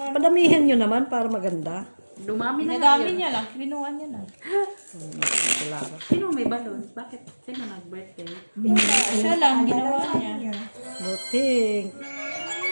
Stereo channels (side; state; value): both; inverted; correlation -1.00